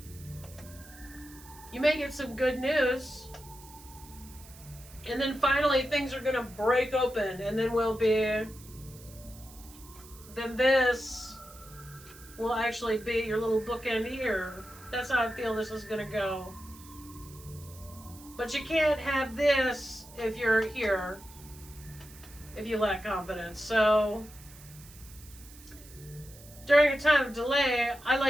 You may get some good news. And then finally things are going to break open. And then then this will actually be your little bookend here. That's how I feel this is going to go. But you can't have this if you're here. If you lack confidence. So during a time of delay, I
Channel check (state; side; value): noise; right; hiss, 20 dB below the sound